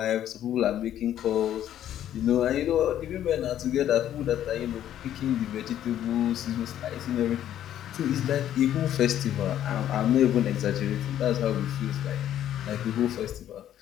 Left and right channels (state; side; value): quieter; right; 11.3 dB